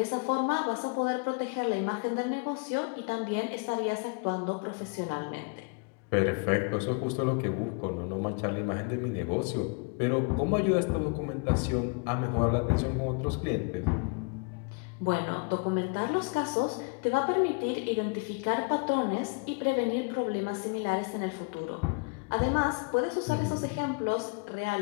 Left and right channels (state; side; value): quieter; right; 32.4 dB